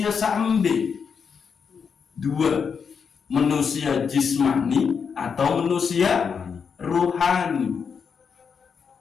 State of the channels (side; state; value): right; quieter; 6.3 dB